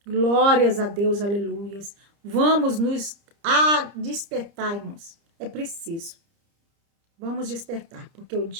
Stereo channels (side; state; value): left; late; 30 ms